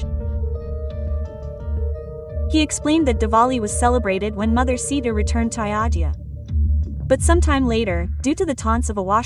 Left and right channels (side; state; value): both; identical; correlation 1.00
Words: He explained that Diwali was celebrated when Mother Sita returned to Ayodhya. But sometime later, due to the taunts of a